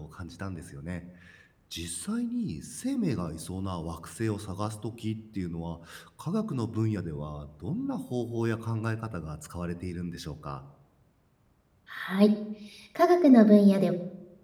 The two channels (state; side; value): identical; both; correlation 1.00